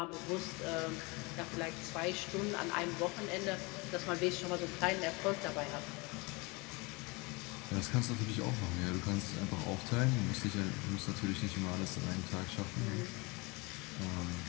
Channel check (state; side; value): quieter; right; 27.0 dB